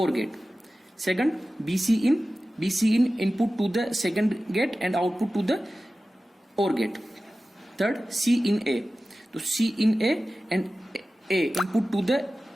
gate. Second, B C in input to the second gate and output to the OR gate. Third, C in A. So C in A and A input to the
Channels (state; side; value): normal; both; correlation 0.95